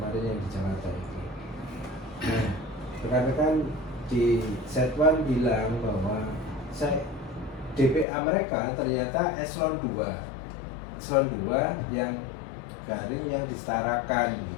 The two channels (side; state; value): right; drops out; at 8.1 s